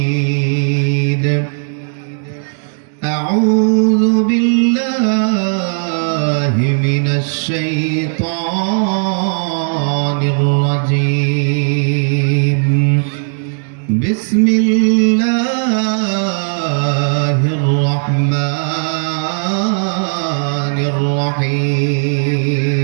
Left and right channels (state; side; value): silent; left; 60 dB below the other